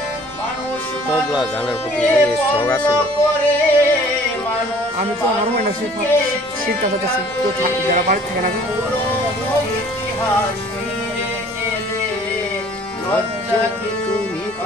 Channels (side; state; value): both; normal; correlation 0.53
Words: তবলা গানের প্রতি শখ আছে। আমি তো আমার মনে শিখতে চাচ্ছি, তো যারা বাড়ি থাকে না